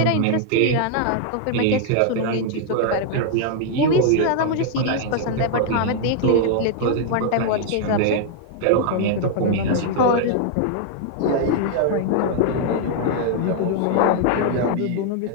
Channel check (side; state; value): both; different; correlation 0.00